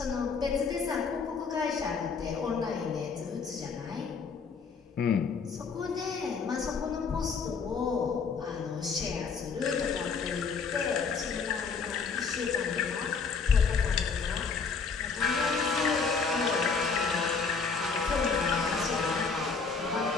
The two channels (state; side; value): quieter; right; 5.2 dB